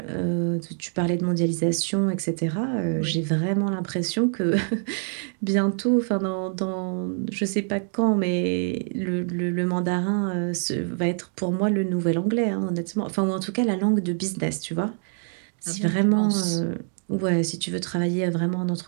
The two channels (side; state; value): left; silent; 58 dB below the other